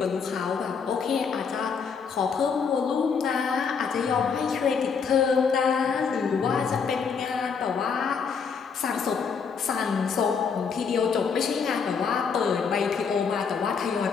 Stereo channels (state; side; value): quieter; right; 6.0 dB